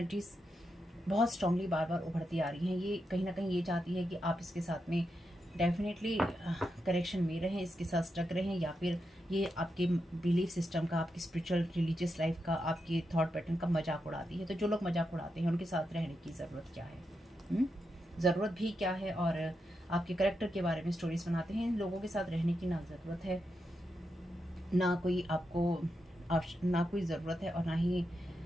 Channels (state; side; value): normal; both; correlation 0.86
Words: बहुत स्ट्रांगली बार बार उभरती आ रही हैं। ये कहीं ना कहीं ये चाहती है कि आप इसके साथ में डेफिनेटली करेक्शन में रहें, इसके साथ स्टक रहें, या फिर ये आपके बिलीफ सिस्टम का, आपकी स्पिरिचुअल रिलीजियस लाइफ का, आपके थॉट पैटर्न का मजाक उड़ाती है। तो जो लोग मजाक उड़ाते हैं उनके साथ रहने की ज़रूरत क्या है, ज़रूरत भी क्या है, और आपके करेक्टर के बारे में स्टोरीज बनाते हैं। इन लोगों के साथ रहने की ना ज़रूरत है, ना कोई ना कोई ज़रूरत है, और ना ही